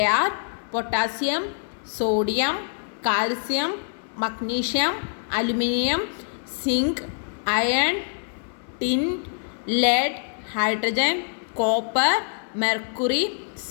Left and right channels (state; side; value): silent; right; 62 dB below the other